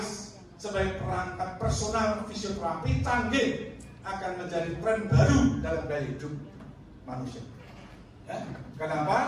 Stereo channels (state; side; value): identical; both; correlation 1.00